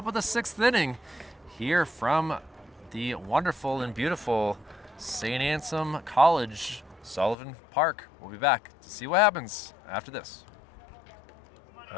of the 6th inning here from the wonderful and beautiful St. Anselm College, Sullivan Park. We'll be back to see what happens after this.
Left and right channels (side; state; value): right; drops out; at 7.4 s